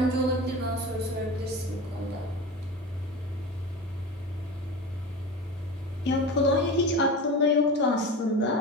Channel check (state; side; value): normal; both; correlation 0.29